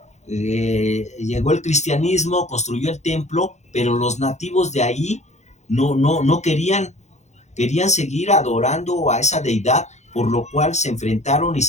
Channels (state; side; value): late; right; 0.33 ms